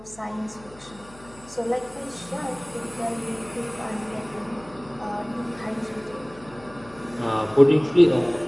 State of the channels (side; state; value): left; noise; hum, 22 dB below the sound